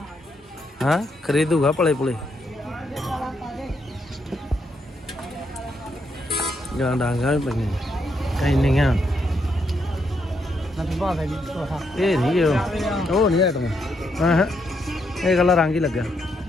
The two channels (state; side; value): normal; both; correlation 0.77